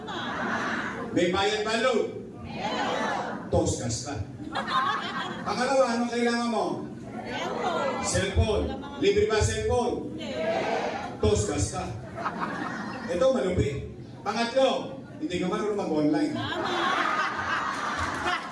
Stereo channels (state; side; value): identical; both; correlation 1.00